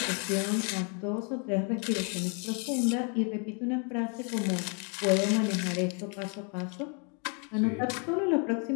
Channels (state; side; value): quieter; right; 37.9 dB